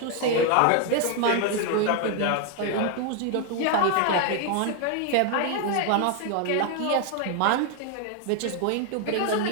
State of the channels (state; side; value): different; both; correlation 0.00